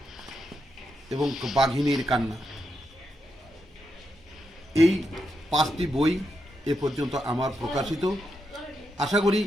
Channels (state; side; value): normal; both; correlation 0.84